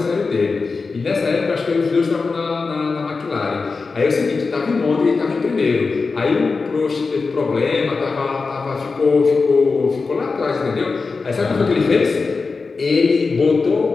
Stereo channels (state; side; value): quieter; right; 4.4 dB